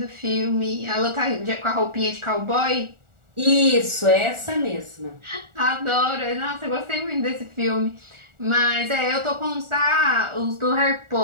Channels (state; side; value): late; left; 1.4 ms